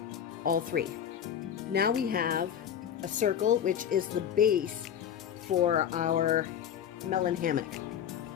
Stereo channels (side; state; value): right; quieter; 9.1 dB